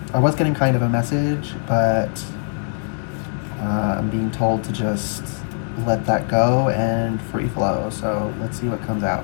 I was getting kind of a message, but I'm being told to just let that go and free flow. So let's see what comes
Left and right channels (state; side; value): silent; right; digital silence